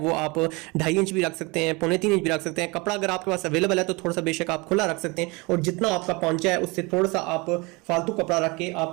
आप 2.5 इंच भी रख सकते हैं, 3.25 इंच भी रख सकते हैं। कपड़ा अगर आपके पास अवेलेबल है तो थोड़ा सा बेशक आप खुला रख सकते हैं और जितना आपका पांचा है उससे थोड़ा सा आप फालतू कपड़ा रख के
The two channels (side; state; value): left; quieter; 25.9 dB